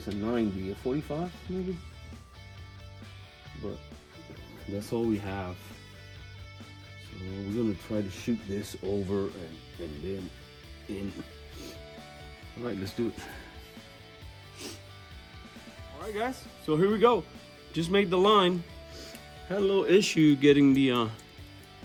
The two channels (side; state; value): both; identical; correlation 1.00